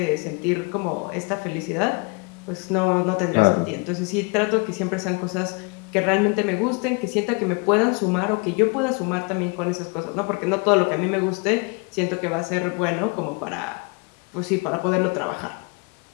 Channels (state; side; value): quieter; right; 31.0 dB